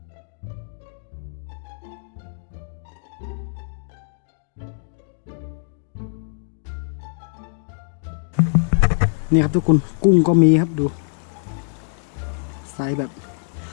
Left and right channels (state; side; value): silent; right; digital silence